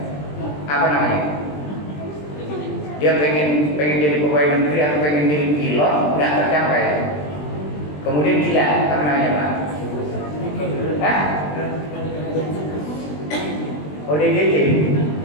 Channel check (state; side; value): late; right; 20 ms